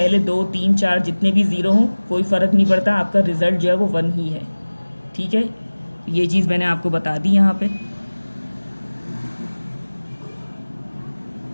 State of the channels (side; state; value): both; inverted; correlation -1.00